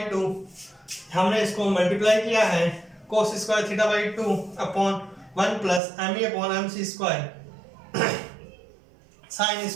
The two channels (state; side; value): drops out; left; at 5.8 s